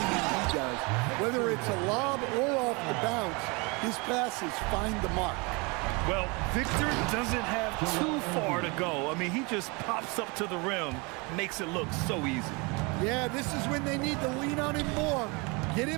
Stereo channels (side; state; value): left; quieter; 28.8 dB